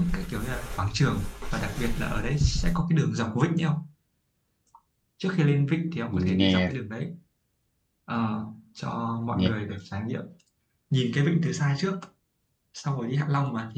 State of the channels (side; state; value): both; identical; correlation 1.00